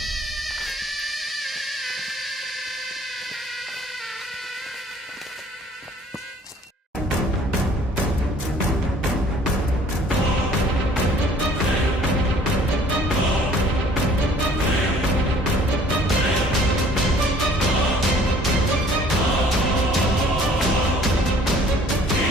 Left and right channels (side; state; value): both; normal; correlation 0.55